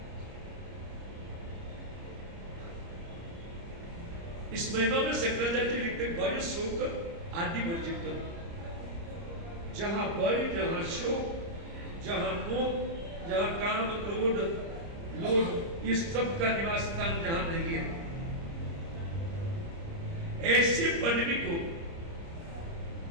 इस महिमा में शंकराचार्य जी लिखते, भय शोक आदि वर्जित। जहां भय, जहां शोक, जहां मोह, जहां काम, क्रोध, लोभ, इस सब का निवास स्थान जहां नहीं है, ऐसे पदवी को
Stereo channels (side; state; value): left; late; 30 ms